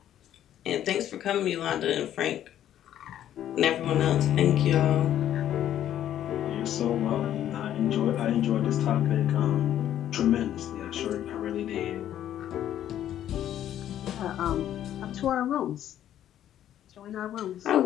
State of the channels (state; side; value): quieter; right; 11.3 dB